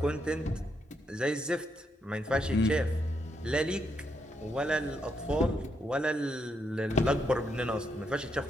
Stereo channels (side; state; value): both; normal; correlation 0.79